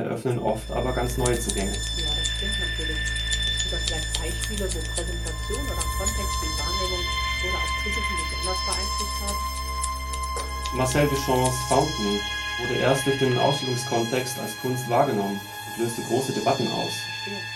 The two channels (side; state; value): both; identical; correlation 1.00